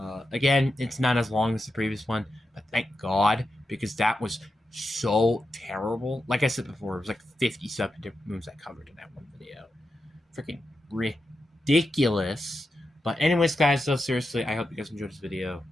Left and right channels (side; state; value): both; normal; correlation 0.88